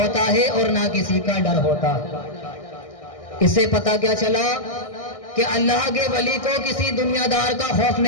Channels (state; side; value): late; right; 1.6 ms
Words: ہے اور نہ کسی کا ڈر ہوتا ہے۔ اس سے پتہ کیا چلا کہ اللہ کے ولی کو کسی دنیا دار کا خوف